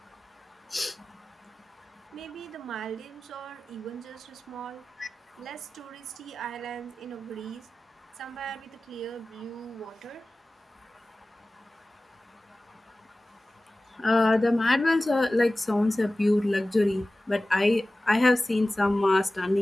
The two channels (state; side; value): normal; both; correlation 0.96